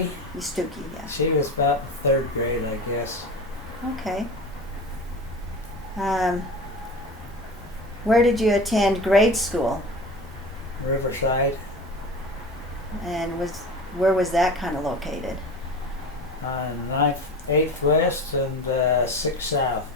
Stookie, yeah. She was about third grade, I guess. Okay. Where did you attend grade school? Riverside. And where was that kind of located? On 9th, 8th West and 6th South.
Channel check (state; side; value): normal; both; correlation 0.32